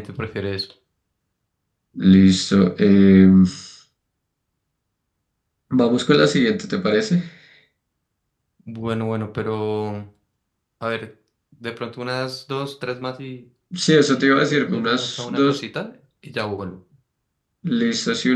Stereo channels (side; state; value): both; identical; correlation 1.00